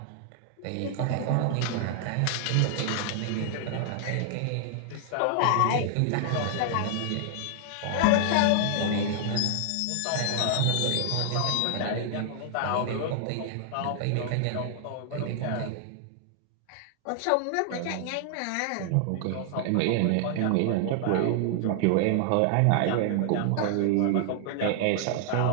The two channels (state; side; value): different; both; correlation -0.01